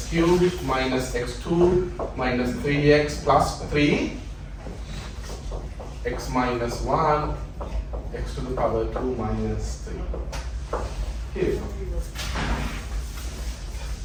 cubed minus x2 minus 3x plus 3, x minus 1, x to the power 2 minus 3. Here we go.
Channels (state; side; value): identical; both; correlation 1.00